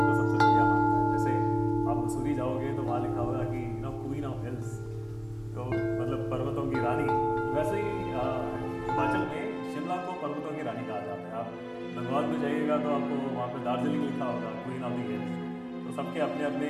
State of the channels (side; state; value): both; identical; correlation 1.00